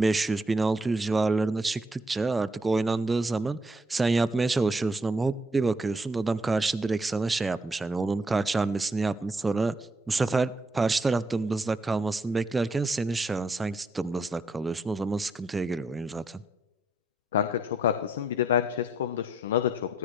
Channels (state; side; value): normal; both; correlation 0.73